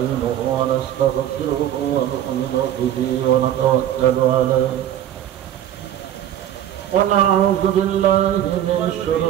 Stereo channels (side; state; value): left; quieter; 11.4 dB